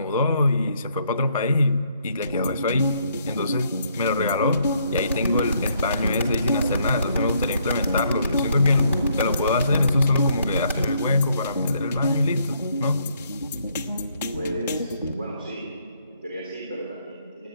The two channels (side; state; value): both; inverted; correlation -0.70